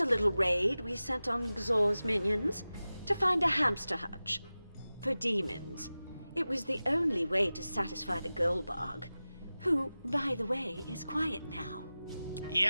little raid we sent on Xor's minions to find a hamster hutch. For demons. It was the only way to satisfy the Goldbog, who, by the way, is quiet now.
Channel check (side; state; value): both; inverted; correlation -0.96